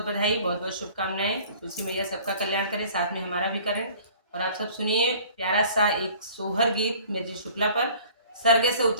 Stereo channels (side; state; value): both; inverted; correlation -0.49